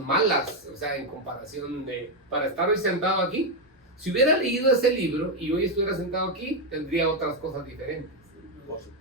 o sea, en comparación de, para estar hoy sentado aquí, si hubiera leído ese libro y hoy estuviera sentado aquí, tendría otras cosas diferentes, Por supuesto.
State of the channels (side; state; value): both; normal; correlation 0.04